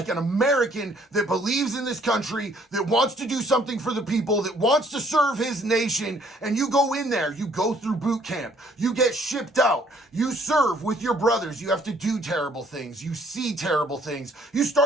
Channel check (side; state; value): both; normal; correlation 0.62